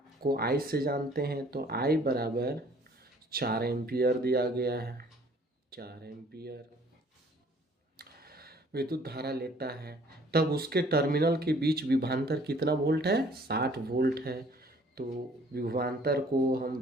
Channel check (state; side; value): normal; both; correlation 0.57